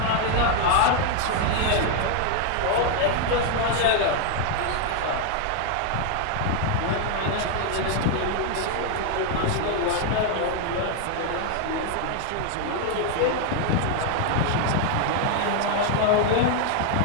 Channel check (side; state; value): both; different; correlation 0.00